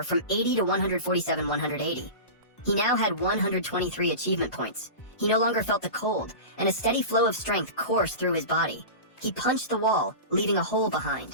from 80 to 147, 180. He now had 123 achievement points. He no longer felt the cold, and a steady flow of strength coursed through his body. He punched the wall, leaving a hole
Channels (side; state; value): right; late; 1.1 ms